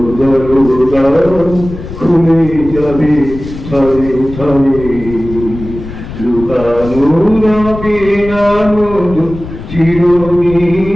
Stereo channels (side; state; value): left; noise; rumble, 11 dB below the sound